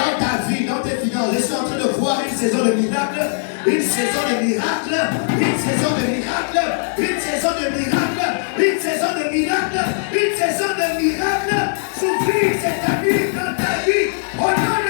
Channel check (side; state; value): right; silent; 66 dB below the other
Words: ta vie, dans tes finances, je suis en train de voir une saison de miracle, une saison de miracle, une saison de miracle, une saison de miracle, une saison de miracle, une saison de miracle. S'ouvrir cette vie dans ta vie au nom